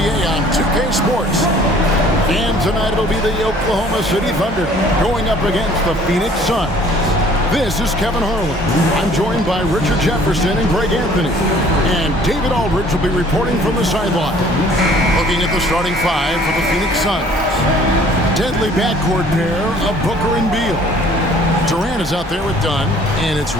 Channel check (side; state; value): both; normal; correlation 0.54